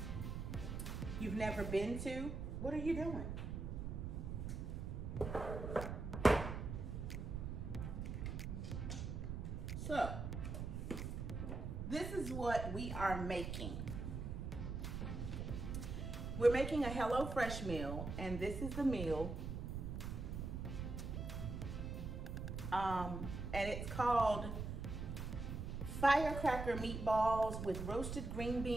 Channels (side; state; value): right; noise; rumble, 4 dB below the sound